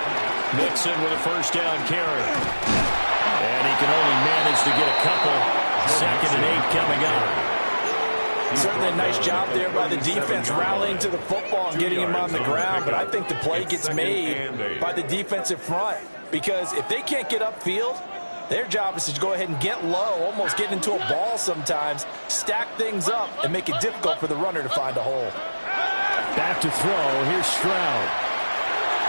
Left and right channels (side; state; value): both; inverted; correlation -1.00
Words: Mixon with a first down carry. And he can only manage to get a couple. 2nd and 8 coming up. Certainly a nice job there by the defense rallying to the football and getting him on the ground, but I think the play gets made by the defensive front because if they can't get upfield, their job is to go ahead and get low, almost get into a ball sometimes, stack things up, and make it difficult for the runner to find a hole. Back to throw. Here's Stroud.